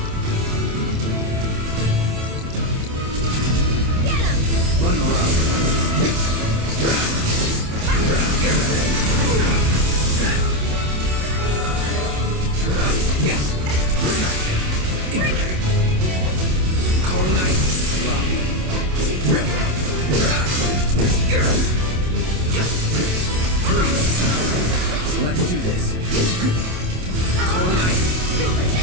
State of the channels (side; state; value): left; late; 27 ms